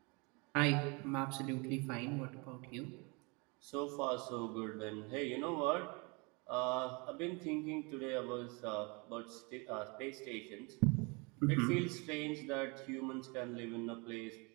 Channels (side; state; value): left; quieter; 29.7 dB